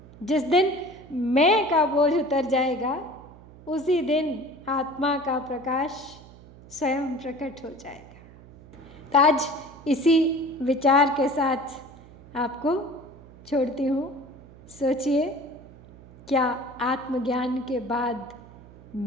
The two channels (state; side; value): noise; right; hum, 21 dB below the sound